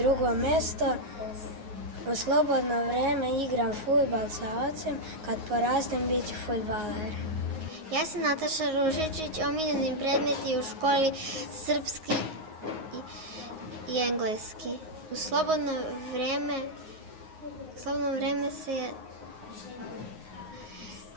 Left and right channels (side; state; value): left; late; 9.5 ms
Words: mesto. U slobodno vreme igram fudbal sa ocem, kad porastem bit ću fudbaler. Ja sam Nataša Ružičić, omiljeni predmeti u školi srpski i engleski. U slobodno vreme se